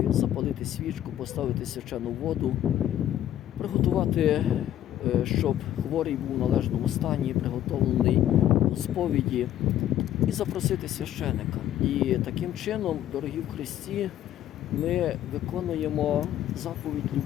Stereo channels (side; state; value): right; quieter; 11.9 dB